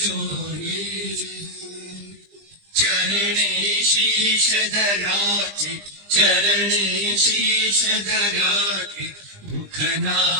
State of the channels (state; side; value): late; left; 20 ms